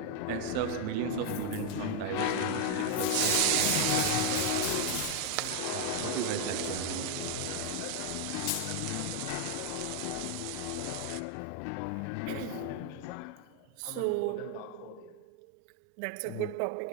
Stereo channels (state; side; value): different; both; correlation 0.00